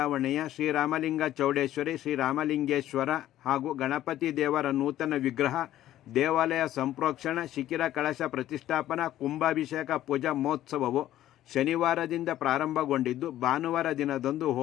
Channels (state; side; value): quieter; right; 13.2 dB